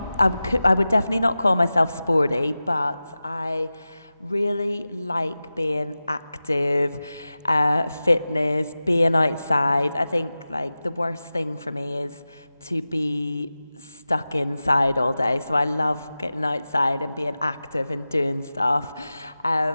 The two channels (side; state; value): both; inverted; correlation -0.95